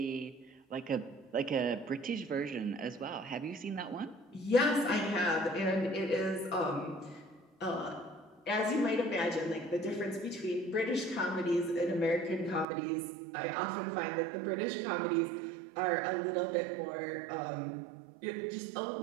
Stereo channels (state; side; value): drops out; left; at 12.7 s